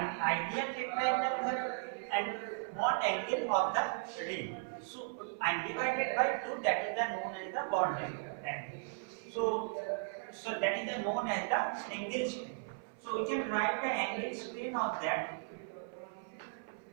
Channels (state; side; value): silent; left; 53 dB below the other